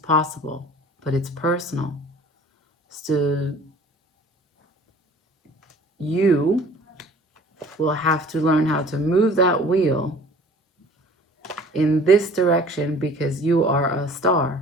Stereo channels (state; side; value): normal; both; correlation 0.48